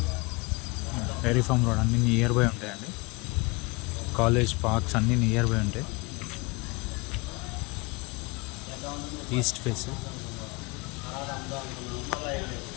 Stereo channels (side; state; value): right; quieter; 26.6 dB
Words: dairy farm road అన్నీ నియర్ బై ఉంటాయండి. కాలేజ్ పార్క్స్ అన్నీ నియర్ బై ఉంటాయి. ఈస్ట్ ఫేస్